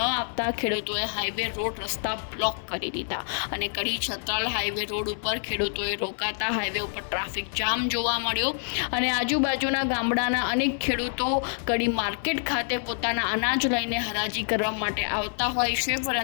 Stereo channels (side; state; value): right; silent; digital silence